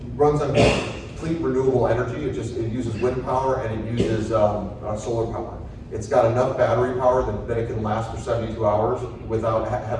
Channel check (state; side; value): identical; both; correlation 1.00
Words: runs on complete renewable energy. It uses wind power and it uses solar power. It's got enough battery power that it can last for 72 hours without